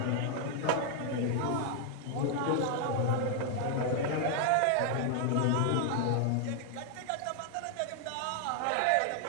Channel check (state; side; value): different; both; correlation 0.00